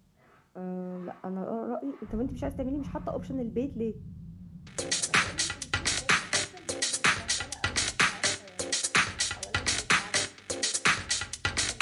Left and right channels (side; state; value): both; identical; correlation 1.00